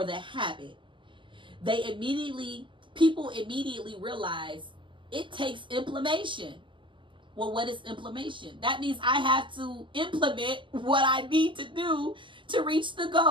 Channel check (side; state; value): left; late; 0.24 ms